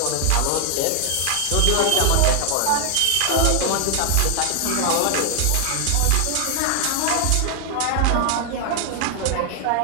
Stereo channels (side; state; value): both; different; correlation 0.00